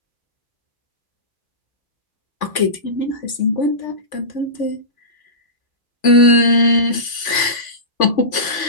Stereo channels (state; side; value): late; right; 3.5 ms